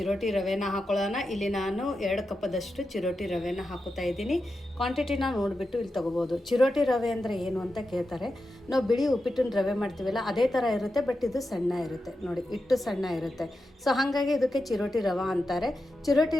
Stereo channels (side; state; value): both; normal; correlation 0.89